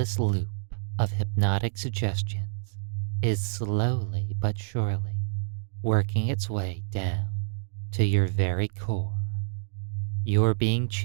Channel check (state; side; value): silent; left; digital silence